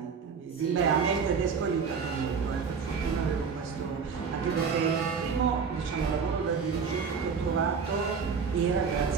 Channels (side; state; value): left; quieter; 5.8 dB